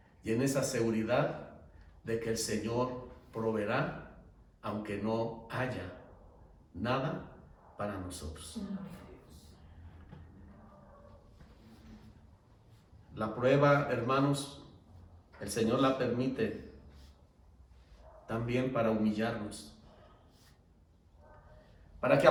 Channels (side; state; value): both; identical; correlation 1.00